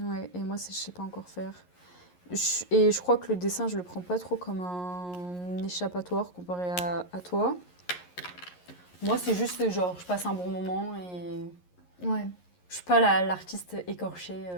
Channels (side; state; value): right; late; 11 ms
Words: et moi, je sais pas encore faire. Et je crois que le dessin, je le prends pas trop comme un échappatoire comparé à toi. Moi, c'est juste genre, je passe un bon moment et Ouais. je suis pas l'artiste écorchée.